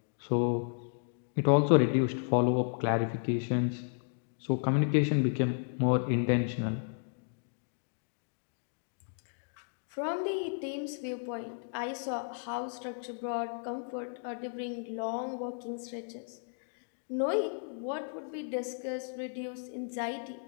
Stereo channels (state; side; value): silent; right; digital silence